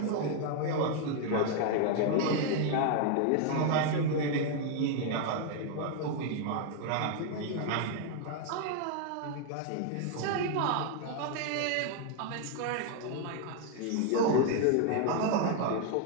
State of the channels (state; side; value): different; both; correlation 0.00